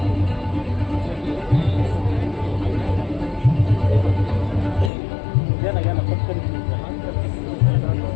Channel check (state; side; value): drops out; right; at 4.9 s